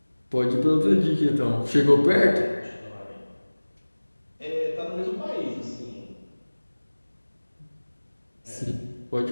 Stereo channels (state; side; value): inverted; both; correlation -1.00